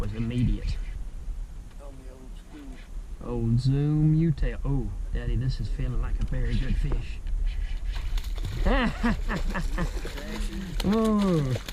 immediate. On the old school. Old zoom U-tail. Oh, Daddy, this is feeling like a very good fish. Ooh. You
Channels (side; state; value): both; identical; correlation 1.00